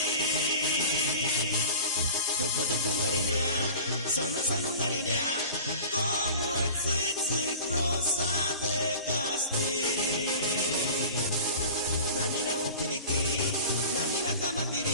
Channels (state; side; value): inverted; both; correlation -0.39